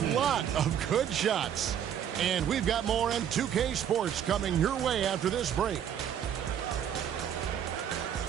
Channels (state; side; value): quieter; left; 9.2 dB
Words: lot of good shots. And we've got more on 2K Sports coming your way after this break.